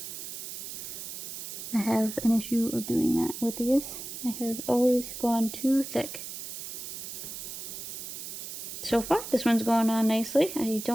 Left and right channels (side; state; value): right; noise; hiss, 8 dB below the sound